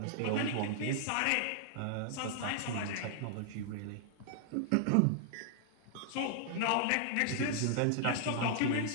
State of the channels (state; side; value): different; both; correlation -0.01